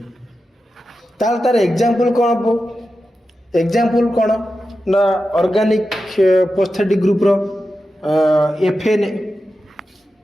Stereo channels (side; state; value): both; normal; correlation 0.91